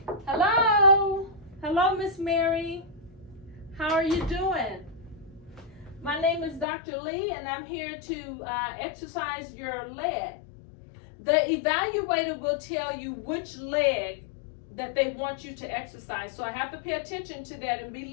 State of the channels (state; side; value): drops out; right; at 6.7 s